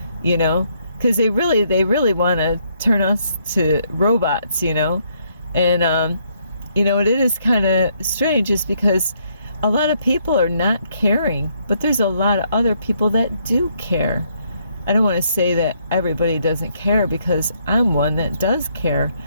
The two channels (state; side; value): inverted; both; correlation -0.71